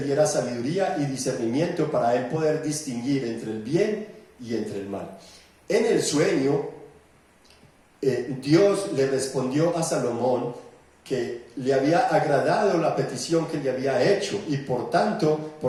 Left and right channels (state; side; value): identical; both; correlation 1.00